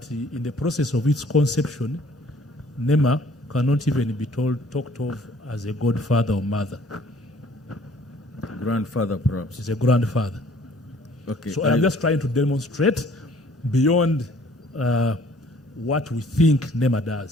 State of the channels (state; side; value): normal; both; correlation 0.56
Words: in the process of its conception, NEMA cannot even be talked of as a godfather or mother. Grandfather, perhaps. It's a grandfather. Okay. So I'm just trying to demonstrate beyond what we think NEMA